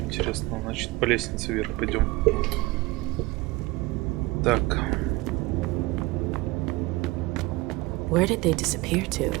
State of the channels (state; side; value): quieter; left; 21.6 dB